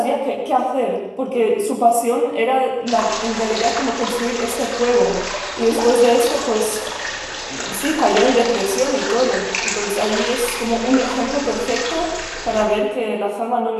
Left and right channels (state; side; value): identical; both; correlation 1.00